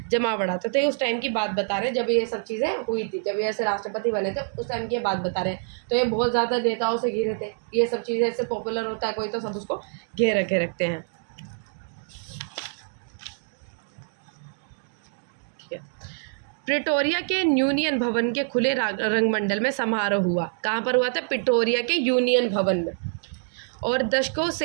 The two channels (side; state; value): left; silent; digital silence